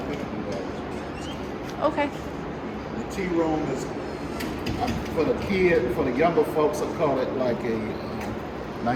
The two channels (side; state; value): both; identical; correlation 1.00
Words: Okay. The tea room is for the kid, for the younger folks. I call it like a